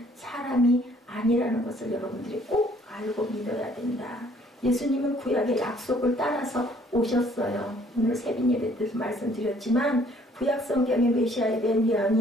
사람이 아니라는 것을 여러분들이 꼭 알고 믿어야 된다. 예수님은 구약의 약속을 따라서 오셨어요. 오늘 새벽 예배 때도 말씀드렸지만 구약 성경의 메시아에 대한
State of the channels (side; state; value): both; normal; correlation 0.60